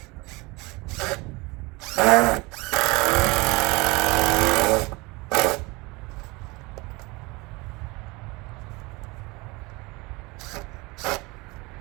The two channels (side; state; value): left; quieter; 24.7 dB